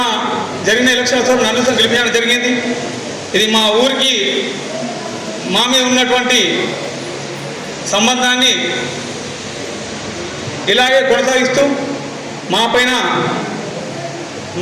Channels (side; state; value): both; identical; correlation 1.00